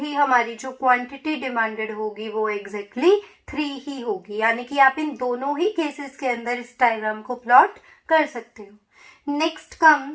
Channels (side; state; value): both; identical; correlation 1.00